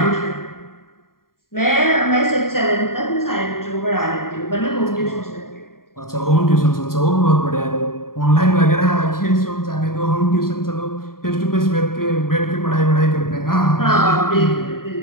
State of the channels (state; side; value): late; right; 0.92 ms